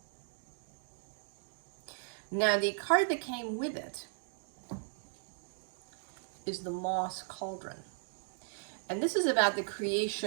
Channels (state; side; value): silent; left; digital silence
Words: Now, the card that came with it is the Moss Cauldron. And this is about the